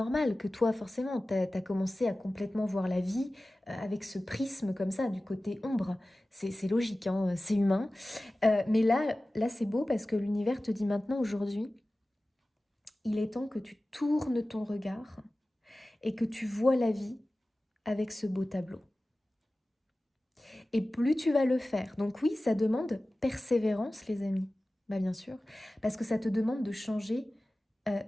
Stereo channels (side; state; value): both; normal; correlation 0.96